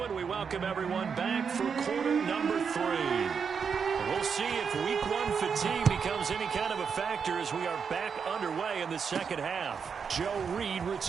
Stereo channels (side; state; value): left; quieter; 6.3 dB